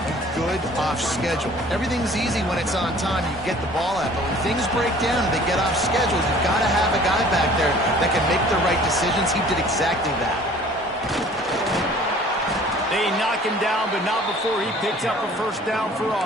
good off schedule. Everything's easy when it's on time. You get the ball out, but when things break down and they get off schedule, you've got to have a guy back there that can make the right decisions. He did exactly that. They knock him down, but not before he picks up a first down for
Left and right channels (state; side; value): normal; both; correlation 0.50